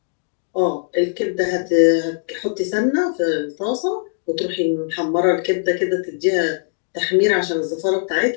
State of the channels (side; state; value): right; silent; digital silence